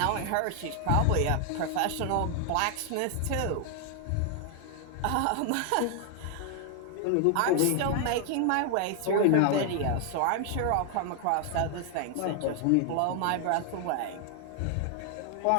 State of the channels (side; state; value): both; different; correlation 0.00